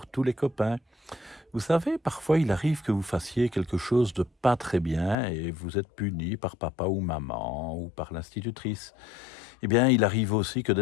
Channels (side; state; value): right; drops out; at 5.2 s